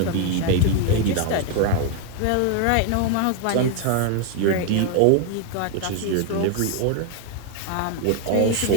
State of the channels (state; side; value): different; both; correlation 0.00